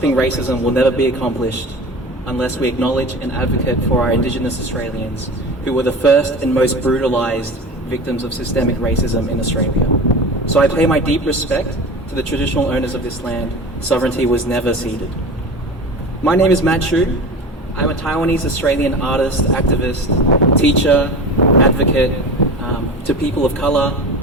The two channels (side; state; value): both; normal; correlation 0.32